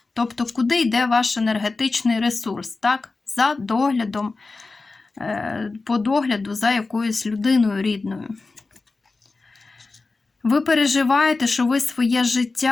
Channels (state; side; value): quieter; right; 3.7 dB